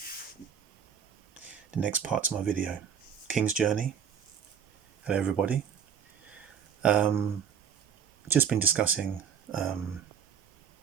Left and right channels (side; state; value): left; quieter; 7.7 dB